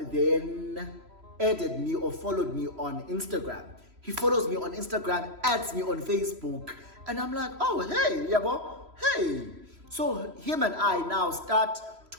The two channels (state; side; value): late; left; 3.0 ms